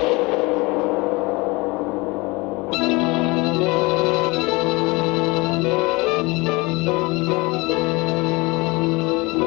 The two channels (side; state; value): right; quieter; 24.9 dB